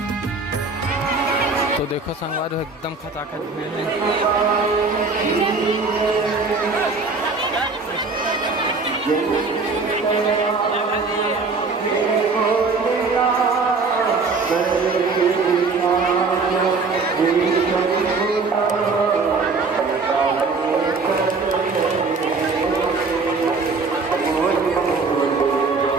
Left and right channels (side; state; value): left; quieter; 4.1 dB